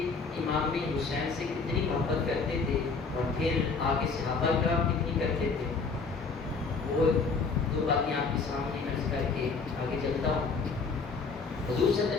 امام حسین سے کتنی محبت کرتے تھے اور پھر آگے صحابہ کرام کتنی کرتے تھے. وہ دو باتیں آپ کے سامنے عرض کر کے آگے چلتا ہوں. حضور صلی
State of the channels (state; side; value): quieter; right; 4.6 dB